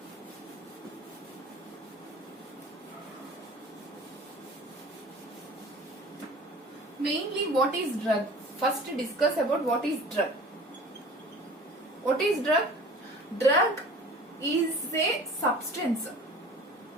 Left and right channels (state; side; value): normal; both; correlation 0.43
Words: Mainly, what is drug? First discuss about what is drug. What is drug? Drug is a substance.